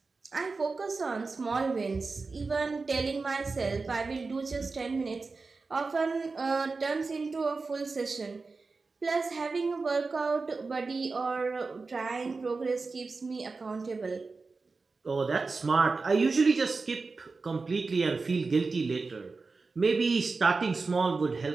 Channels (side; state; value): left; quieter; 4.1 dB